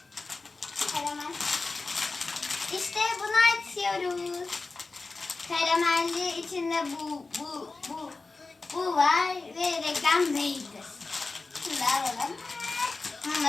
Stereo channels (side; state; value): right; quieter; 3.8 dB